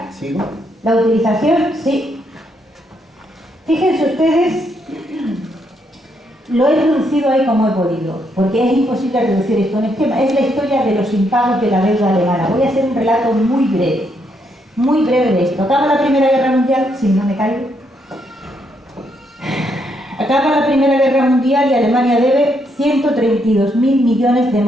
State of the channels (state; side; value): normal; both; correlation 0.76